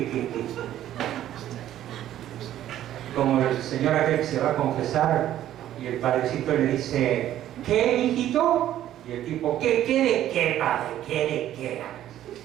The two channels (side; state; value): left; quieter; 12.3 dB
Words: Como el señor aquel que se va a confesar y el padrecito le dice, ¿qué, hijito? Y el tipo, ¿qué de qué, padre? ¿Qué de qué?